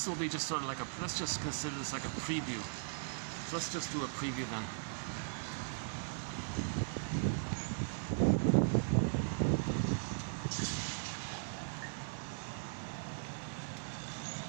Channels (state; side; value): silent; left; 52 dB below the other